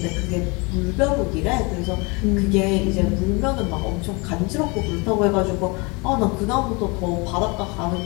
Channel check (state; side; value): quieter; right; 28.7 dB